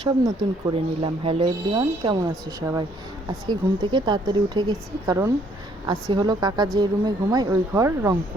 সব নতুন করে নিলাম। হ্যালো এভরিওয়ান, কেমন আছো সবাই? আজকে ঘুম থেকে তাড়াতাড়ি উঠে গেছি, কারণ আজকে হলো কাকা যে রুমে ঘুমায় ওই ঘর রং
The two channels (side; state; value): both; normal; correlation 0.65